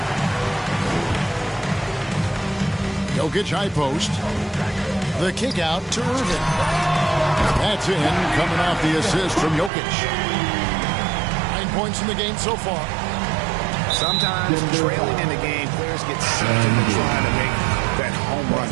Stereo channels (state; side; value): drops out; left; at 9.7 s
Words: Jokic high post. The kick out to Irving. That's in, coming off the assist from Jokic. 9 points in the game so far. Sometimes trailing in the game, players get sucked into trying to make that home run.